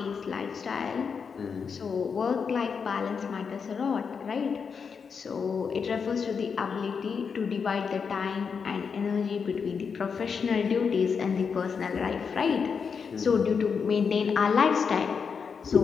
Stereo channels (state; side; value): quieter; right; 6.0 dB